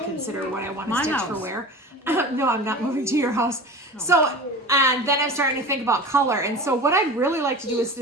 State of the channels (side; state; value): both; normal; correlation 0.34